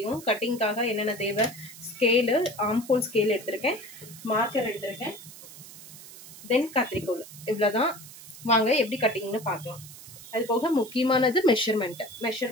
கட்டிங்காக என்னென்ன தேவை. ஸ்கேலு, ஆம்ஹோல் ஸ்கேல் எடுத்திருக்கேன், மார்க்கர் எடுத்திருக்கேன், தென் கத்திரிக்கோல். இவ்வளோதான். வாங்க எப்படி கட்டிங்னு பார்க்கலாம். அது போக முக்கியமானது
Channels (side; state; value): right; noise; hiss, 17 dB below the sound